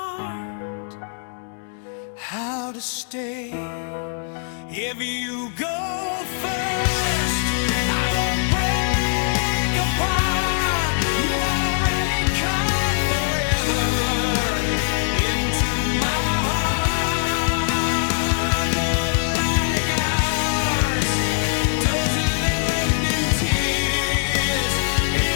how to stay. If you go first, I won't break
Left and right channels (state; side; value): silent; right; digital silence